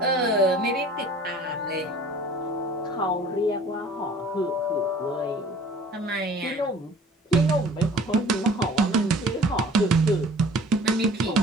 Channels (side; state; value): both; normal; correlation 0.49